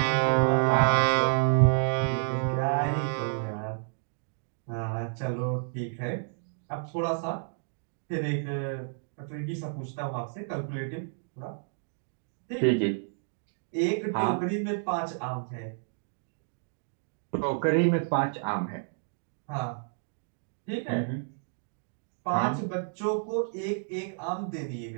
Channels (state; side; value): silent; left; digital silence